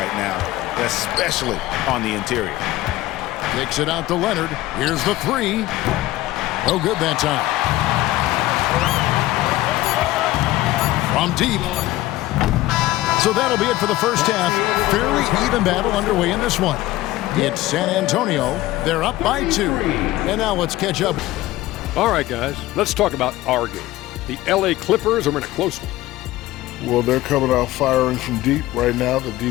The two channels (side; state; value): right; quieter; 16.8 dB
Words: now, especially on the interior. Takes it out to Leonard. Here's the three. No good that time. From deep. So that'll be it for the first half. Fairly even battle underway in this one. It's San Antonio. They're up by 2. And now let's catch up. All right, guys, let's talk about our game. The LA Clippers are in a close one. Well, they're coming out firing from deep right now. The